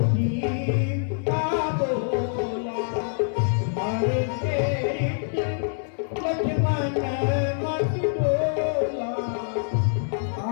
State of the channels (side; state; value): right; silent; digital silence